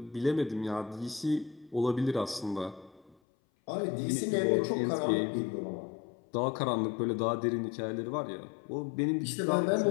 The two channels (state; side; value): drops out; right; at 3.2 s